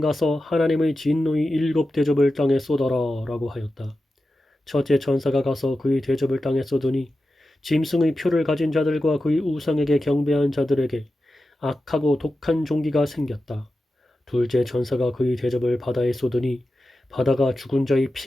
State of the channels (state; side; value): normal; both; correlation 0.92